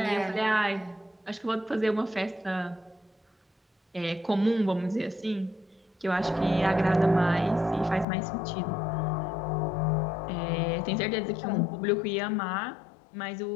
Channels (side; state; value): right; drops out; at 8.1 s